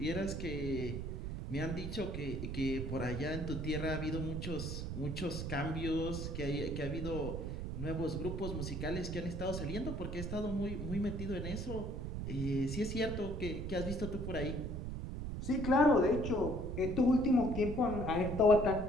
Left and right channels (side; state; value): right; noise; rumble, 4 dB below the sound